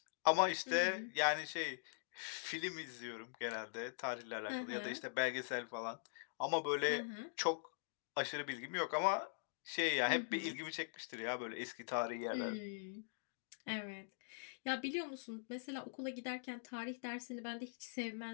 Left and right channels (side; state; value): right; silent; digital silence